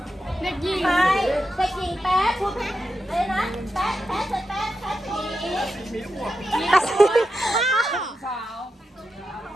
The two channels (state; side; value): normal; both; correlation 0.88